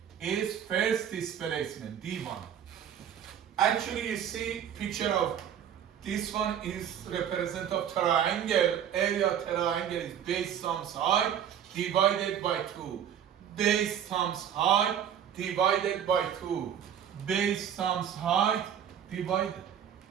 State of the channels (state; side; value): quieter; left; 9.2 dB